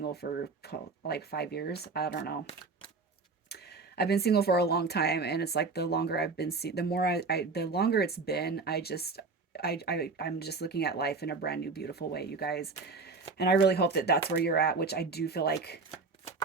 for like 5 years. I don't know. I've been single for a long time, and it's like the longer I've been, the more the longer it's been, I'm just looking at life in a brand new, beautiful way, you guys. And I really hope that that's where you're at, which I do feel like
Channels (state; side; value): quieter; left; 4.2 dB